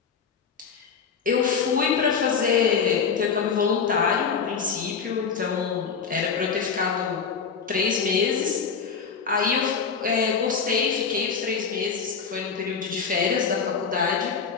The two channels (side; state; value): right; quieter; 6.0 dB